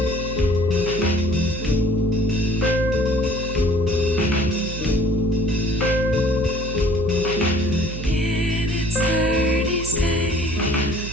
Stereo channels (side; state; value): right; noise; hum, 8 dB below the sound